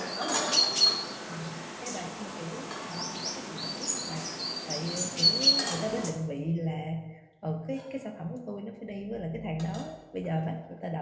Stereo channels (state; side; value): identical; both; correlation 1.00